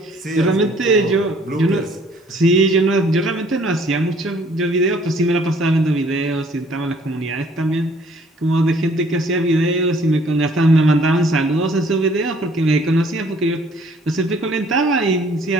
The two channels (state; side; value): normal; both; correlation 0.59